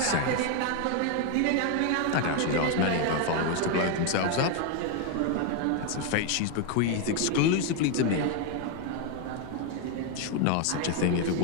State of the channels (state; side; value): different; both; correlation 0.01